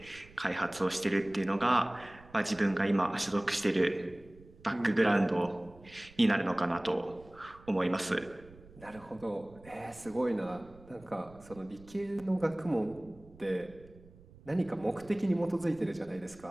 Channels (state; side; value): noise; right; rumble, 23 dB below the sound